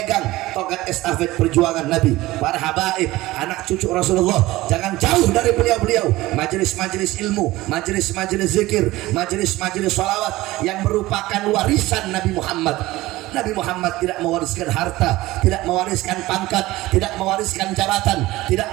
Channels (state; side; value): quieter; left; 18.3 dB